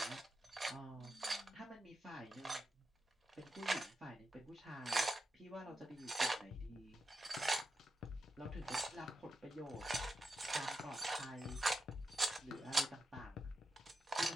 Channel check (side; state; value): both; normal; correlation 0.88